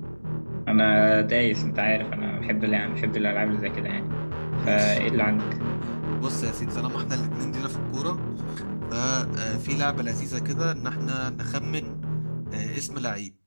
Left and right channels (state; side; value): inverted; both; correlation -1.00